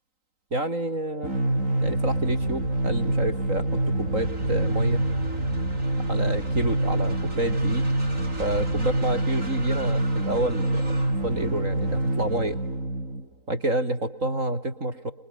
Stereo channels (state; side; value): late; left; 3.9 ms